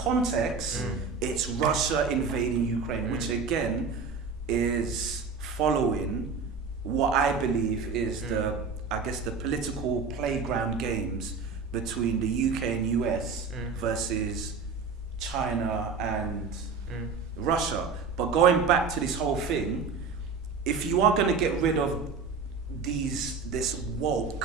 it's Russia invading Ukraine, which again is following what I believe is the political playground games between the UK and US versus China and Russia. But going back to this whole thing, if you are going to get rid of this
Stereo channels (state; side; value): quieter; left; 5.0 dB